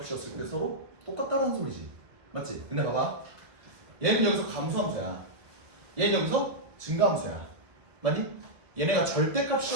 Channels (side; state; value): left; late; 1.3 ms